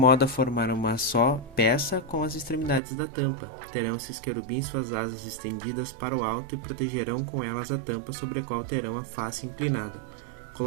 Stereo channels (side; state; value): left; drops out; at 2.8 s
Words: a formar uma só peça com as extremidades da tampa. Terão esses querubins suas asas estendidas para o alto e protegerão com elas a tampa sobre a qual terão a face inclinada.